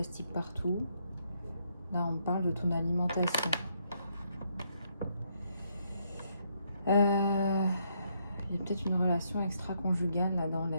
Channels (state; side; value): inverted; both; correlation -0.74